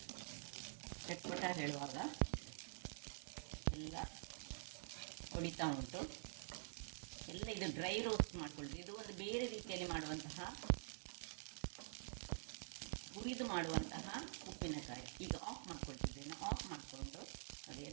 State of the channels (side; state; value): left; silent; digital silence